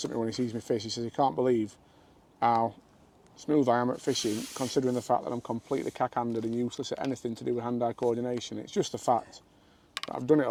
at me when he sees me fish. He says he can't believe how smooth I am at fishing, considering the fact that I'm completely cack-handed and useless at anything to do with hand-eye coordination. It's just the fact that I've done it a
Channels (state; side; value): identical; both; correlation 1.00